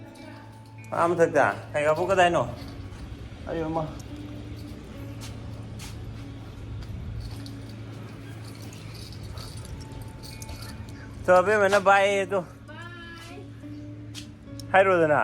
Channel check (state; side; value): identical; both; correlation 1.00